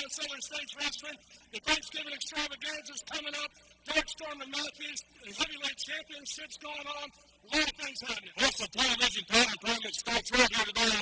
in Southern States Wrestling. The Thanksgiving extravaganza is coming up. Darkstorm and Matthews heavyweight championships going on. A lot of things happening. Plus the television title tournament starts right here today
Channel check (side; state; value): both; identical; correlation 1.00